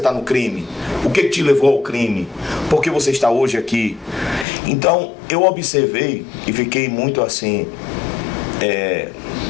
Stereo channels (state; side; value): drops out; right; at 4.5 s